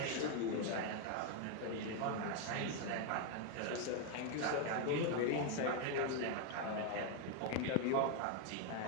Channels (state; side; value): different; both; correlation 0.00